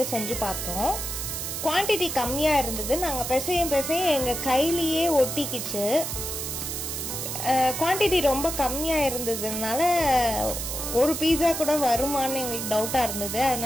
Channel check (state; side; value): noise; right; hiss, 4 dB below the sound